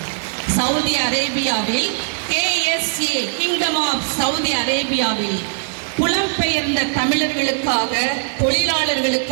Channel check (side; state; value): left; silent; digital silence